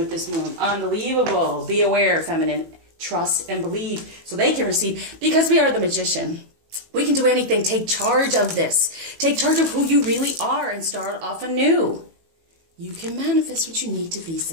this moon. Unbelievable. Be aware, feminine. Trust and believe so they can receive, because we are the magician. We can do anything. Take charge of this. Take charge of who you really are and start off anew. You can manifest what you need to be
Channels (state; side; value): late; left; 18 ms